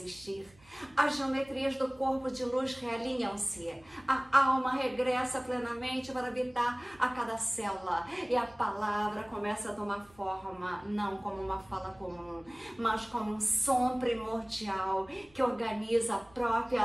as geometrias do corpo de luz realinham-se, a alma regressa plenamente para habitar a cada célula e a palavra começa a tomar forma, não como uma fala comum, mas como um som primordial que organiza a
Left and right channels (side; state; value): right; noise; hum, 28 dB below the sound